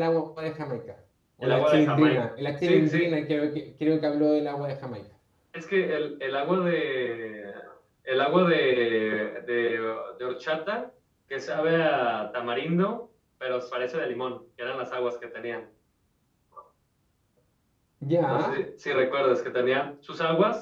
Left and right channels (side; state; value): both; identical; correlation 1.00